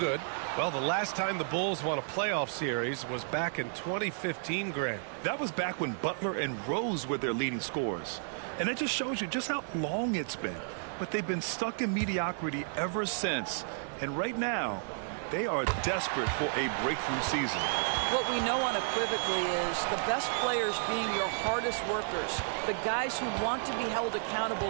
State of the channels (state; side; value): silent; left; 56 dB below the other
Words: Well, the last time the Bulls won a playoff series was back in 2015, Grant. That was back when Butler and Rose were their leading scorers. And it just shows you just how long it's been. But they've been stuck in mediocrity ever since. And right now, they are desperate for a breakthrough season. What we know unequivocally is the best players being your hardest workers, the guys who want to be held